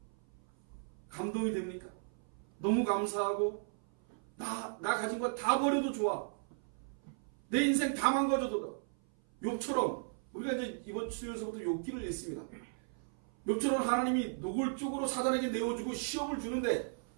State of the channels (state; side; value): silent; left; 54 dB below the other